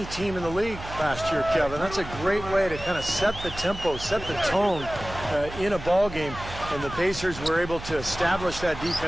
team in the league last year, Kevin. That's a great way to kind of set the tempo, set the tone in a ball game. And the Pacers were able to establish that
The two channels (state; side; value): noise; right; hum, 12 dB below the sound